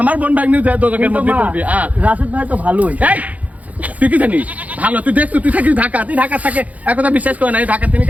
আমার বোন ভাগ্নি দোজকের মধ্যে পড়বি। রাশেদ ভাই তো ভালোই। এই তুই কি জানিস ভালো? তুই দেখছো, তুই থাকিস ঢাকা, তুই ঢাকা থাকে একথা বিশ্বাস করে না। ঢাকা তিনি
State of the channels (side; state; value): left; late; 0.072 ms